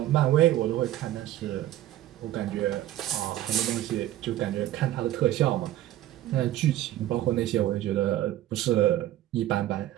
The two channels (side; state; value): left; quieter; 13.8 dB